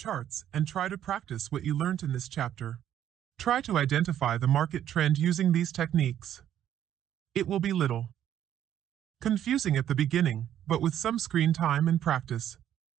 and try to practice what you learned in this chapter. Try to identify the market trend using these techniques. It will be little confusing at the beginning, but with some screen time and practice,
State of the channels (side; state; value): left; quieter; 10.8 dB